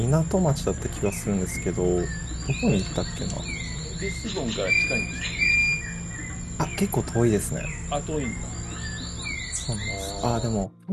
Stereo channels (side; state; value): both; identical; correlation 1.00